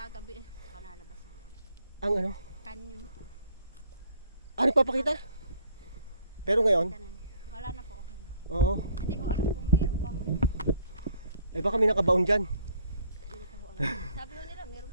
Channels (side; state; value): both; inverted; correlation -0.62